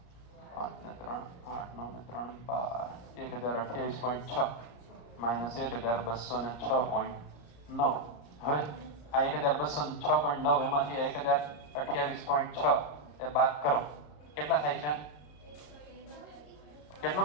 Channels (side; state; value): right; late; 34 ms